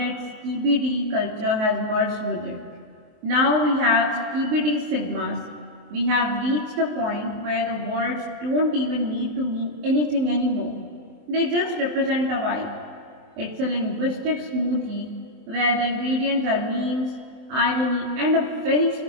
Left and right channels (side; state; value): left; late; 23 ms